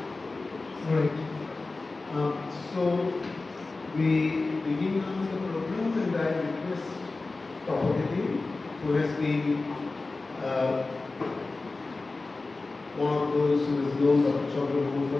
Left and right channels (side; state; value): right; quieter; 3.5 dB